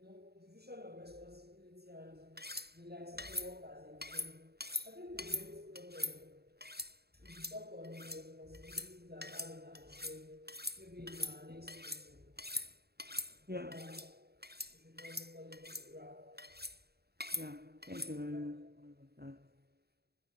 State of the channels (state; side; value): late; left; 0.47 ms